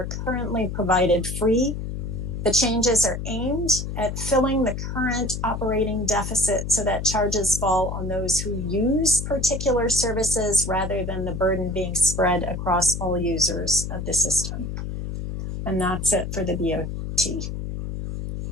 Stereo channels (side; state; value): left; noise; hum, 5 dB below the sound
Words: currently provided free. The changes are aimed at filling the current operating deficit so that charges fall on those who use particular services rather than the burden being spread across all users of the system. And that's it for the BOT.